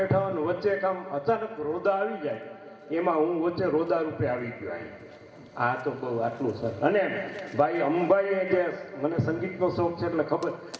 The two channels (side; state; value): both; identical; correlation 1.00